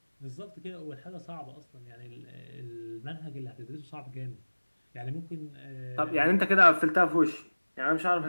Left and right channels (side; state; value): both; inverted; correlation -1.00